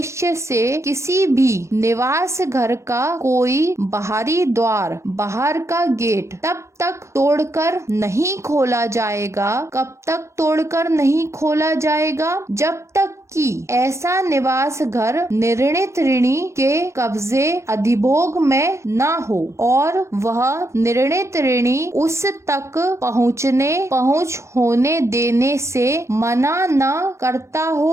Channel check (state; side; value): late; left; 0.14 ms